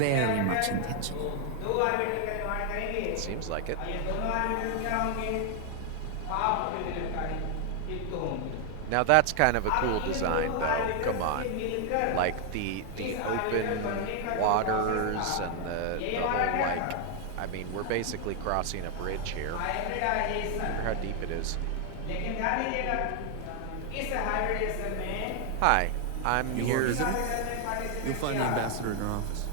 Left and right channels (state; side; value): different; both; correlation 0.00